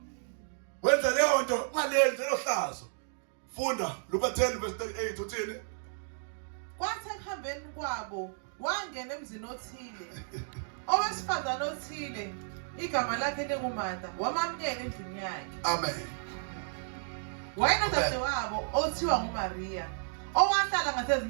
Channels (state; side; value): silent; left; digital silence